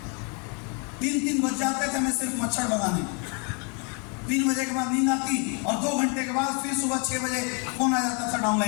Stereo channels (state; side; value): quieter; right; 35.7 dB